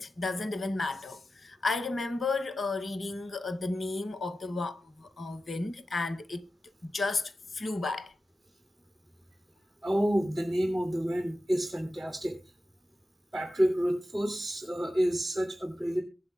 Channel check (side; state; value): both; normal; correlation 0.93